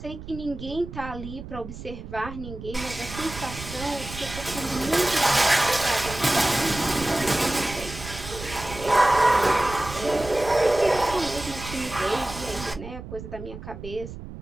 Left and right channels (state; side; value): noise; right; rumble, 12 dB below the sound